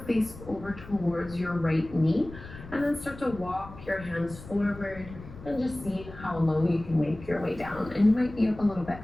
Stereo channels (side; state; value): left; noise; rumble, 15 dB below the sound